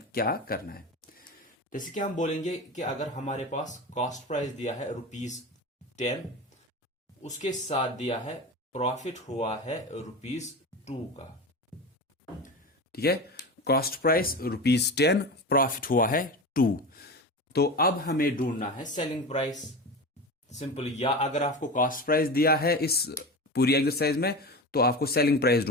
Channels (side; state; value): both; normal; correlation 0.27